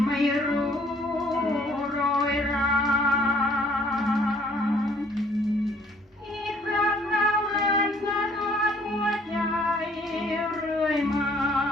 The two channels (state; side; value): normal; both; correlation 0.59